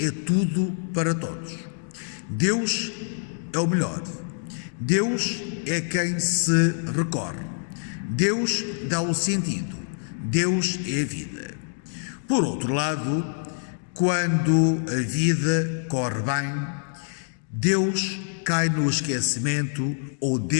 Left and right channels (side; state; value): right; silent; digital silence